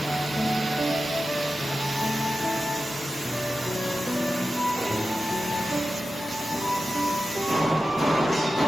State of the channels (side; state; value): both; normal; correlation 0.93